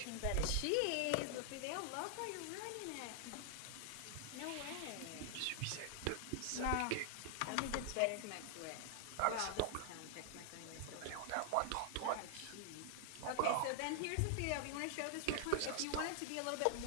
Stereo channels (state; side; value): different; both; correlation 0.00